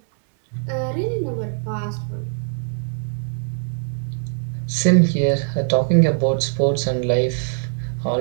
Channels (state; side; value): silent; left; digital silence